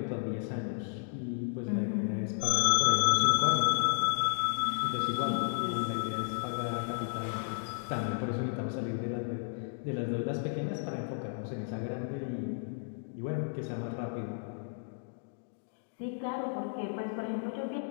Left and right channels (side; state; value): right; silent; digital silence